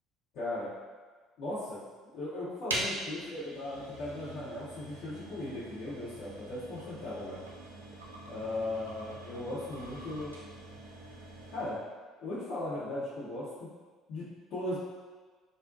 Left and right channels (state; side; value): normal; both; correlation 0.57